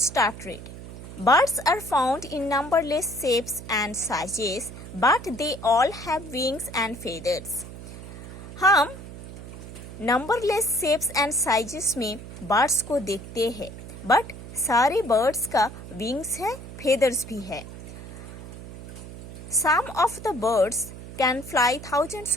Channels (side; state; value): right; noise; hum, 13 dB below the sound